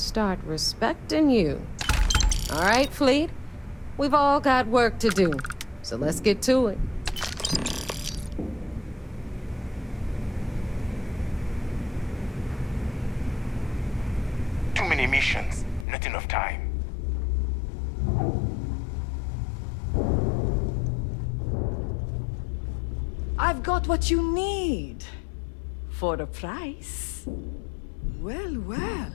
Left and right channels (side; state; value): right; drops out; at 15.9 s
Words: respecting you. All right, Fleet? We've all got work to do, so let's get to it. Too many missions, not enough time. I've got what you need. For a price. Well, well.